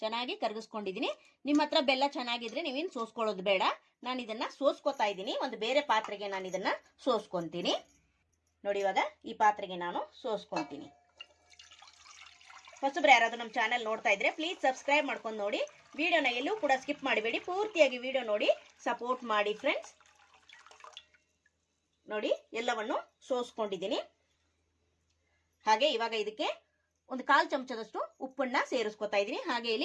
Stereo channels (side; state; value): both; identical; correlation 1.00